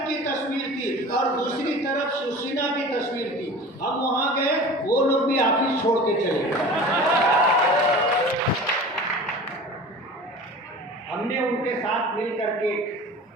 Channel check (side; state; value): both; normal; correlation 0.38